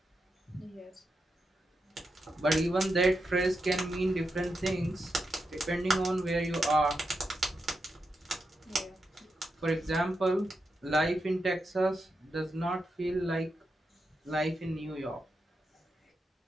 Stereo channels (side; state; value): both; normal; correlation 0.86